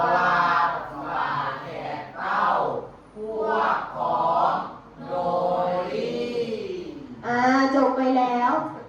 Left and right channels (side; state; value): both; identical; correlation 1.00